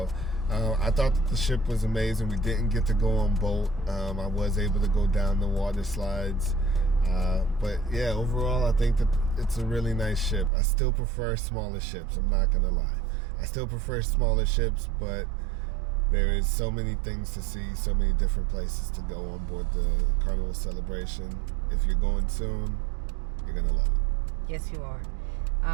I thought that the ship was amazing. We didn't get to go on boat. I was able to go down the water slides. But yeah, overall, I think that it's a really nice ship. I still prefer smaller ships. I'm not going to lie. I still prefer smaller ships, but there is so many things to see, so many different places to go on board the Carnival Celebration. If you're going soon, you're going to love it. Yes, you are.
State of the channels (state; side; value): drops out; left; at 10.5 s